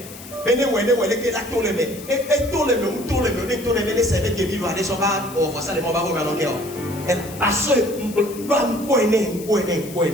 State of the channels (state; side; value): noise; left; hiss, 16 dB below the sound